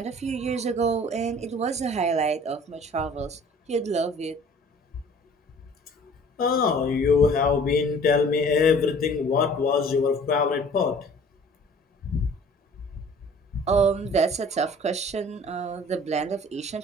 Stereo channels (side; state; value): both; normal; correlation 0.50